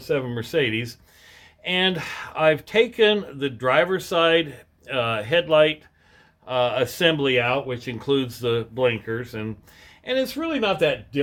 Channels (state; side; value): identical; both; correlation 1.00